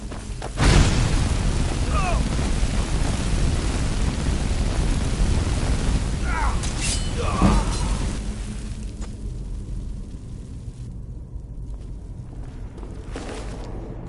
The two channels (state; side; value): identical; both; correlation 1.00